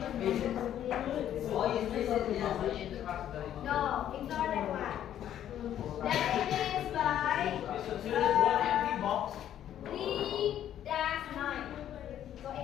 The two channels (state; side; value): quieter; right; 10.9 dB